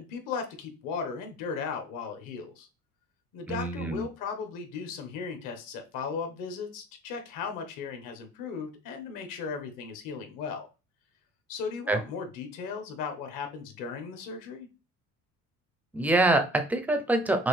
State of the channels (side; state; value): both; normal; correlation 0.48